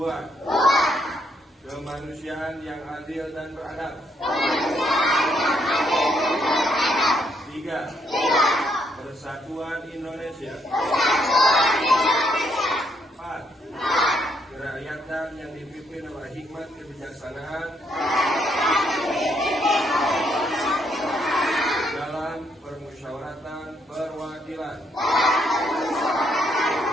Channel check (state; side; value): normal; both; correlation 0.73